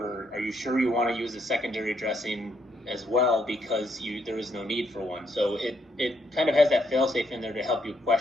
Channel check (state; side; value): normal; both; correlation 0.74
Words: Are you sure you want to use a secondary dressing as well, because there is no need for one? So it kind of has that fail-safe in there to help you